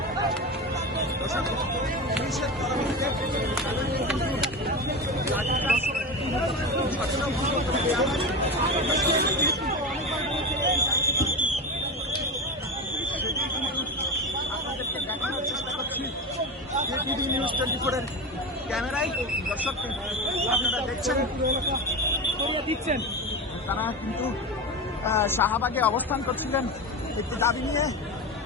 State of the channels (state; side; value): normal; both; correlation 0.22